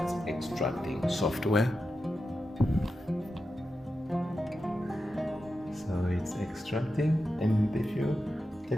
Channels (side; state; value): both; normal; correlation 0.90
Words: extracting software. So it's extracting, and if you